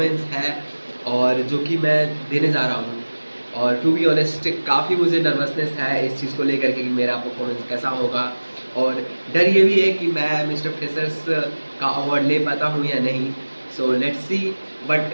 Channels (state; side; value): inverted; both; correlation -1.00